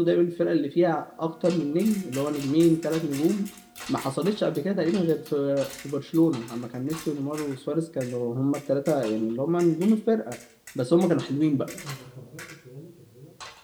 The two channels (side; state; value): both; identical; correlation 1.00